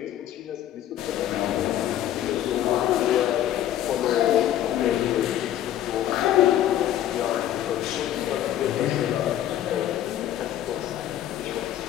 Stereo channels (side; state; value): right; quieter; 11.9 dB